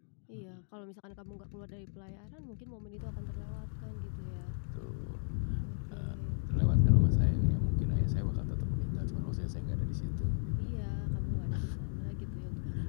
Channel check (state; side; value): silent; right; digital silence